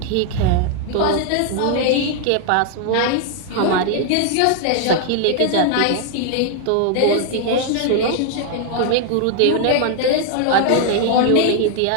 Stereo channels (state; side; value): different; both; correlation 0.00